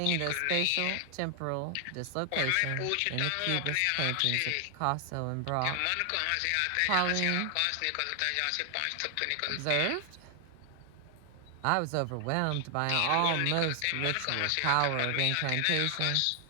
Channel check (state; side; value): different; both; correlation 0.00